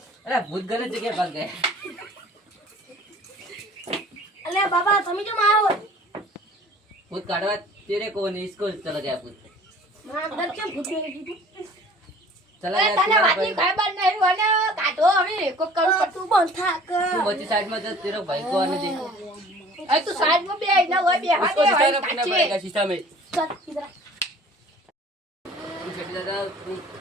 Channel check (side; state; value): both; normal; correlation 0.49